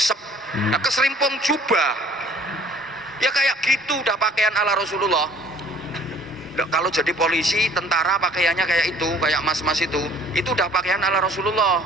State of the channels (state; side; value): normal; both; correlation 0.54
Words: Nah, keserimpung jubah. Ya kayak gitu udah pakaian ala Rasulullah. Nah, kalau jadi polisi, tentara pakaiannya kayak itu, kayak mas-mas itu udah pakaian ala Rasulullah.